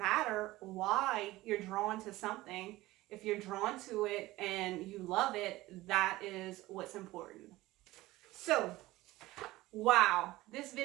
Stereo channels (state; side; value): quieter; left; 18.1 dB